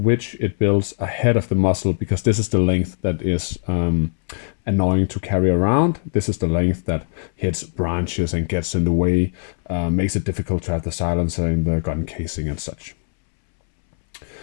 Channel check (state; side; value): silent; right; 65 dB below the other